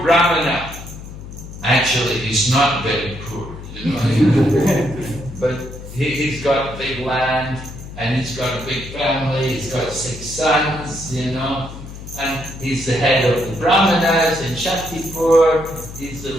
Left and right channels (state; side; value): noise; left; hum, 13 dB below the sound